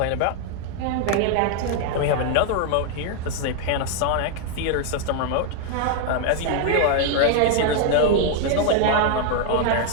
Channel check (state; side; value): different; both; correlation 0.00